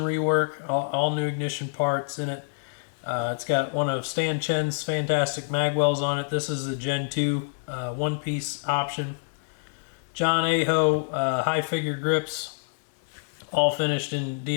all new ignition parts in it. It's got one of Stan Chen's fantastic magwells on it. This is the Gen 2 one-piece option. John Aho high figure grips, all finished in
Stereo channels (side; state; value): right; silent; 60 dB below the other